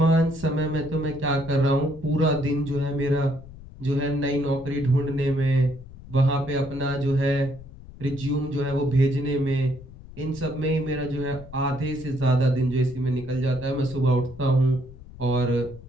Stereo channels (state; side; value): noise; left; rumble, 17 dB below the sound